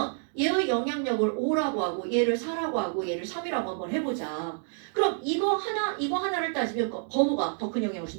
얘의 영향력을 5라고 하고 얘를 4라고 하고 얘를 3이라고 한번 해보자. 그럼 이거 하나를 따지면 번호가 더 큰 영향을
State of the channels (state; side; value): silent; left; digital silence